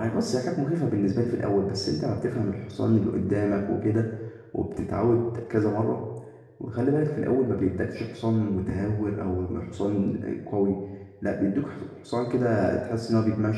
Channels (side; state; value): both; identical; correlation 1.00